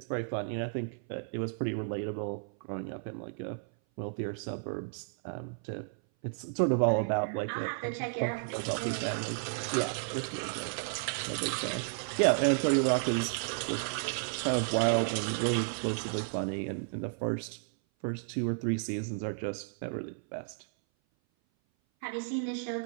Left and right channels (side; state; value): left; silent; 56 dB below the other